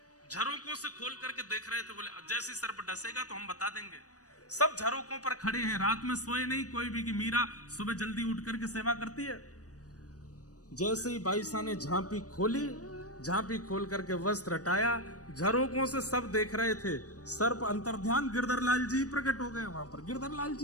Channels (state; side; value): late; right; 0.67 ms